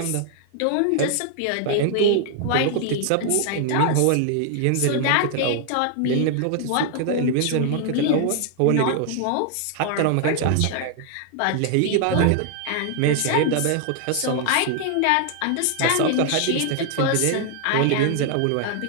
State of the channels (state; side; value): different; both; correlation 0.00